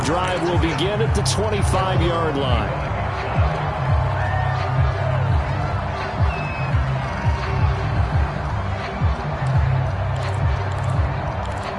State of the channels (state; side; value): identical; both; correlation 1.00